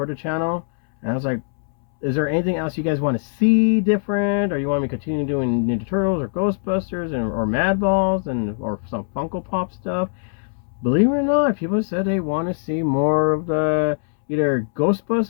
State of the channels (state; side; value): silent; right; 65 dB below the other